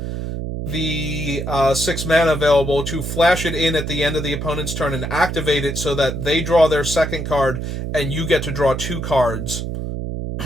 the 6 mana available to flash it in at the end of the opponent's turn and activate it so that they draw their second card and you get to draw 2 cards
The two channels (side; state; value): right; noise; hum, 4 dB below the sound